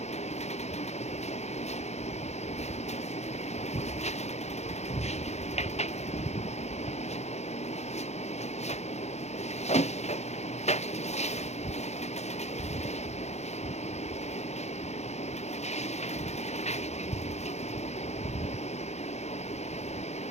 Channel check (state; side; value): late; right; 0.32 ms